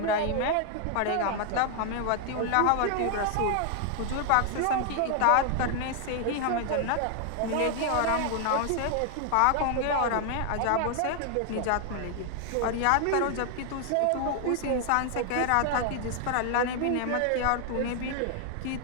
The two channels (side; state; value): both; different; correlation 0.00